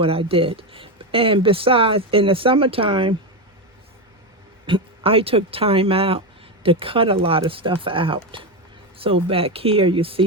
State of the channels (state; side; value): normal; both; correlation 0.11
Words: I did. And besides, in the summertime, I took time out to cut a lot of stuff out. So back here, you